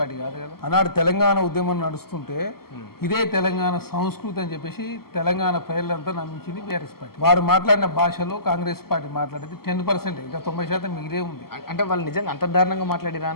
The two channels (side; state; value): right; late; 0.94 ms